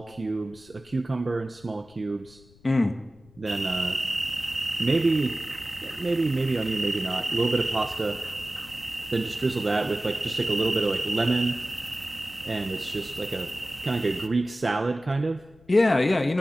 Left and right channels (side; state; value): left; noise; rumble, 27 dB below the sound